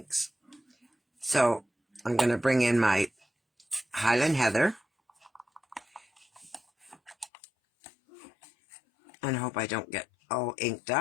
So I'm going to bring in my Highland Heather, and I hope I don't get all inked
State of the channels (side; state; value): right; drops out; at 7.3 s